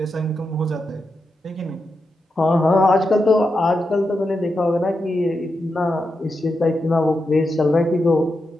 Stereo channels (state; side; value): normal; both; correlation 0.87